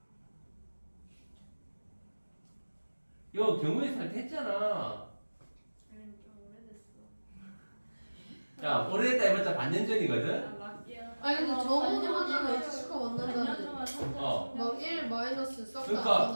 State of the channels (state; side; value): inverted; both; correlation -1.00